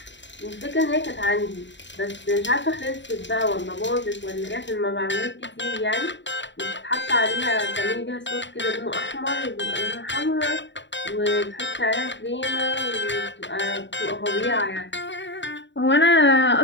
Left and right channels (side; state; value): right; late; 0.53 ms